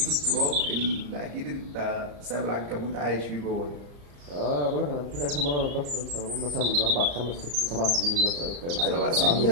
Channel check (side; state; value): left; late; 35 ms